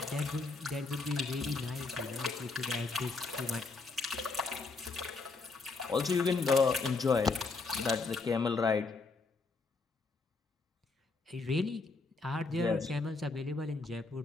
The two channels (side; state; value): right; quieter; 4.0 dB